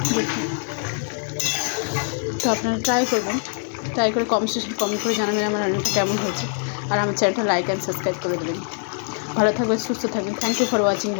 দেখুন, তো আপনারা ট্রাই করবেন, ট্রাই করে কমেন্ট করে জানাবেন আমার রান্নাটা কেমন হয়েছে। আর আমার চ্যানেলটা লাইক অ্যান্ড সাবস্ক্রাইব করে দেবেন। ভালো থাকবেন, সুস্থ থাকবেন। থ্যাংক ইউ ফর ওয়াচিং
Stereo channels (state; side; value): silent; right; 59 dB below the other